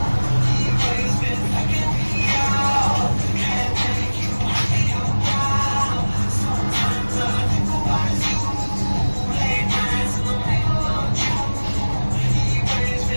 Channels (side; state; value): both; inverted; correlation -1.00